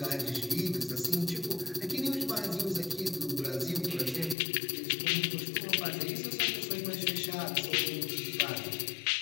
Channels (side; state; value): right; drops out; at 4.4 s